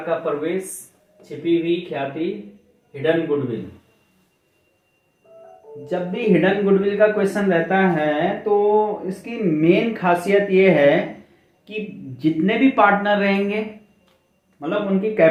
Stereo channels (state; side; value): identical; both; correlation 1.00